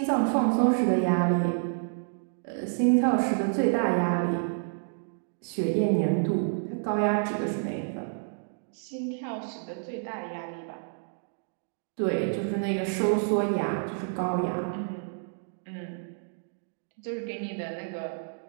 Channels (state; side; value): silent; left; digital silence